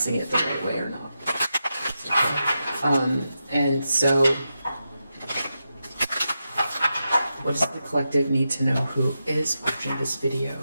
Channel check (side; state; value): both; inverted; correlation -0.88